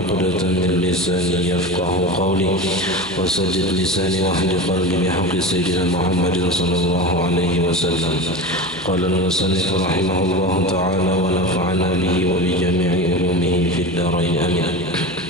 min lisani yafqahu qawli wa saddid lisani wa hdi qalbi bihaqqi sayyidina Muhammadin sallallahu alaihi wasallam. Qala al-musannif rahimahullahu ta'ala wa nafa'ana bihi wa bi jami'i ulumihi fid darain amin.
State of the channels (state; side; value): noise; left; hum, 22 dB below the sound